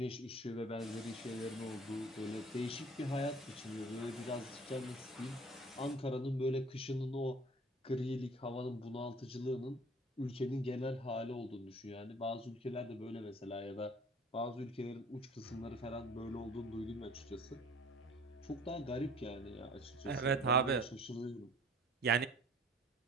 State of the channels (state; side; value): normal; both; correlation 0.48